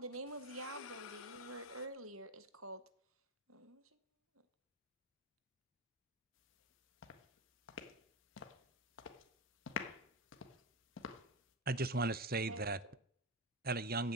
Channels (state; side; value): normal; both; correlation 0.19